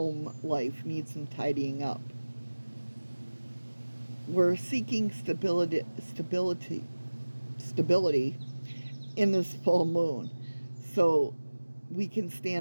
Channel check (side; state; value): both; inverted; correlation -1.00